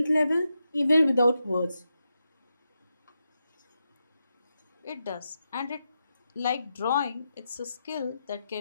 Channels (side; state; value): both; inverted; correlation -0.87